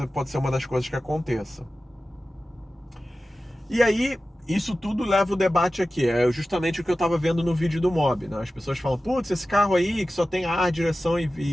pode ser uma das coisas que aconteça. E aí, isso tudo leva o debate aqui. É justamente o que eu estava vendo no vídeo do Mob, né? As pessoas falam, putz, esse carro aí que só tem ar, direção e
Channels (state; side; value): normal; both; correlation 0.95